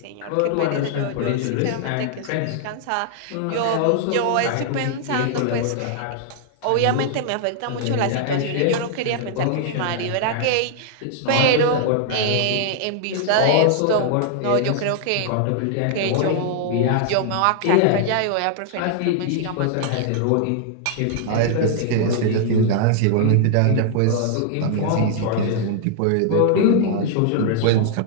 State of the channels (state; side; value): different; both; correlation -0.01